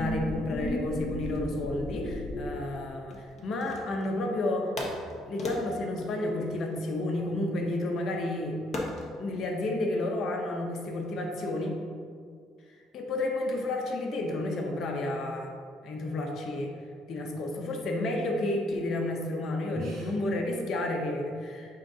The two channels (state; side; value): normal; both; correlation 0.68